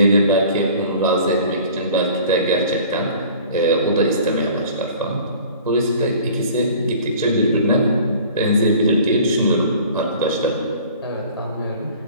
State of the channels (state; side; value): inverted; both; correlation -0.47